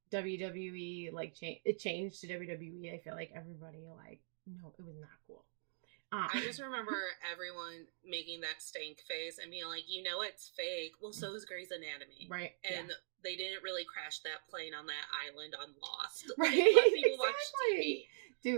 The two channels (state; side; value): silent; left; digital silence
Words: WWE, like it changed to WWE. I feel like everybody like, no, it was not cool. I just remember everyone making that stank face and being like, you know, it's fake. Well, so is Grey's Anatomy. Right. And they didn't really crash that plane on that island on Lost. Right. Exactly.